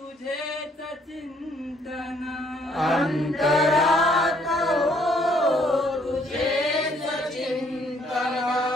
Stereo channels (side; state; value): both; normal; correlation 0.65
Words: चिंतन अंतरात हो तुझेच चिंतन